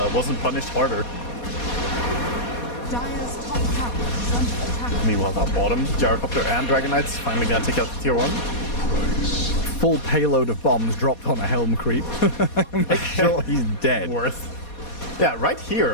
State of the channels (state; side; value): late; right; 4.2 ms